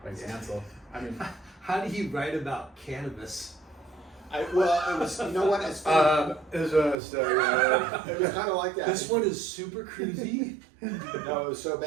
Like Ansel. I mean, how do you write about cannabis? It was, you know what? It's funny. It was kind of like that. This one is super cruisy. No, it was so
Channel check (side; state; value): left; drops out; at 7.0 s